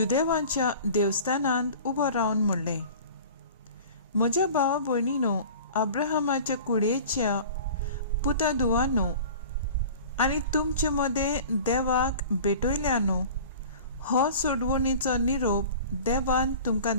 देवस्थानांत उबो रावन म्हणलें, म्हज्या भावा भयणीनो, अब्राहमाच्या कुडयेच्या पुता धुवानो आनी तुमचे मदें देवाक भेटयल्यानो, हो सोडवणीचो निरोप देवान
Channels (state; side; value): inverted; both; correlation -0.41